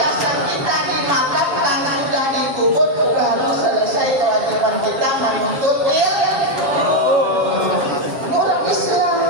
kita dimakan karena sudah dikubur, baru selesai kewajiban kita menuntut ilmu. Ini orang Islam.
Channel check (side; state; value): left; late; 7.4 ms